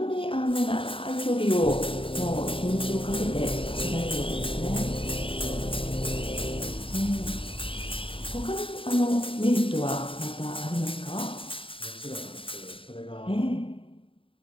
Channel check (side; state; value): right; late; 0.26 ms